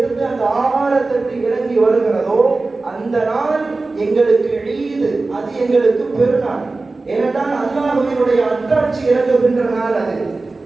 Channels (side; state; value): left; quieter; 3.5 dB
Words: அந்த ஆகாரத்தட்டு இறங்கி வருகிறதோ அந்த நாள் எங்களுக்கு ஈது, அது எங்களுக்கு பெருநாள். ஏனென்றால் அல்லாஹ்வினுடைய அத்தாட்சி இறங்குகின்ற நாள் அது.